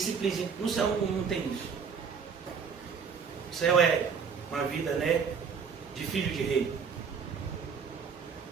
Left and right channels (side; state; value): left; quieter; 6.1 dB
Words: No céu não tem isso. O céu é uma vida, né, de filho de rei.